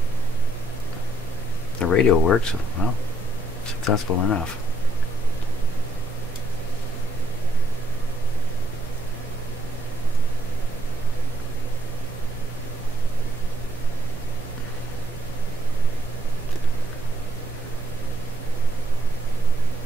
The radio works, well, successful enough.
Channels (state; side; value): normal; both; correlation 0.72